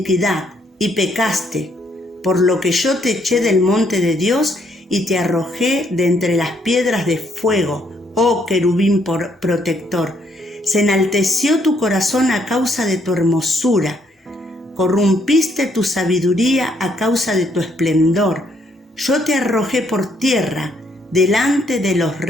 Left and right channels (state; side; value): normal; both; correlation 0.71